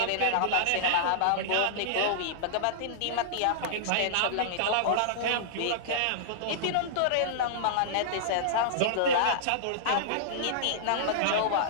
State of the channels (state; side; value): different; both; correlation -0.02